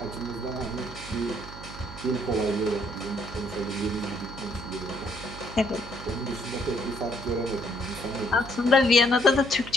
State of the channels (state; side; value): noise; right; hum, 14 dB below the sound